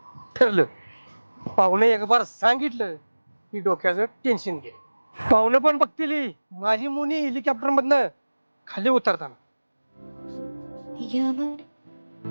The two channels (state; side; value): inverted; both; correlation -1.00